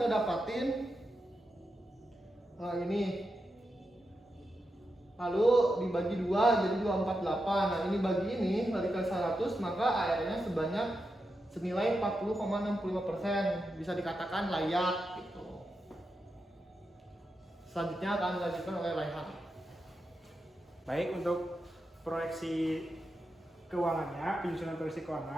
dapatin ini, lalu dibagi 2 jadi 248. Nah, ini bagi ini dikali 100 maka ARR-nya sebanyak senilai 40,65%, bisa dikatakan layak gitu. Selanjutnya akan dilanjutkan oleh Raihan. Baik, untuk proyeksi keuangannya, penyusunan proyeksi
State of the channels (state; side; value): normal; both; correlation 0.87